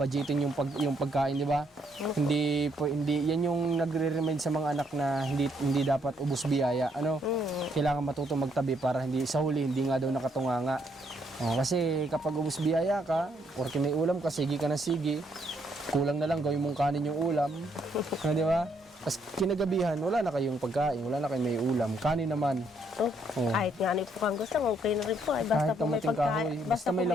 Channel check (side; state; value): both; normal; correlation 0.72